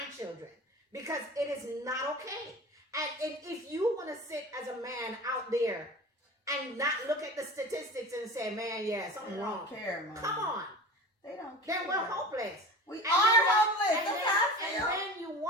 Because it is not okay. And if you want to sit as a man out there and not look at the statistics and say, man, yeah, something wrong. They don't care, man. Come on. They don't care. Then we're hopeless. We are hopeless. And then you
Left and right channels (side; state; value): both; normal; correlation 0.35